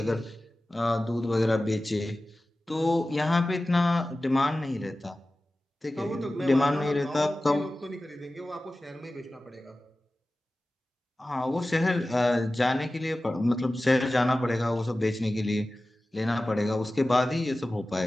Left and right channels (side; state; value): both; normal; correlation 0.96